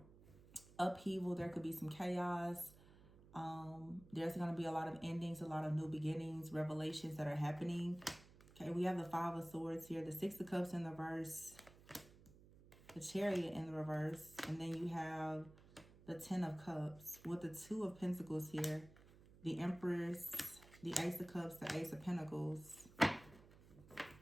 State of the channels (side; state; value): right; noise; hum, 22 dB below the sound